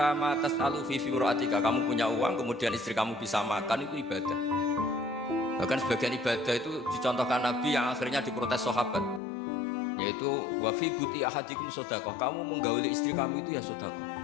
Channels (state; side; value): drops out; right; at 9.2 s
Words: ma tas'alu fi firatika, kamu punya uang kemudian istri kamu bisa makan, itu ibadah. Bahkan sebagian ibadah itu dicontohkan Nabi yang akhirnya diprotes sahabat, yaitu wa fi buti ahadikum sedekah, kamu menggauli istri kamu itu ya sedekah.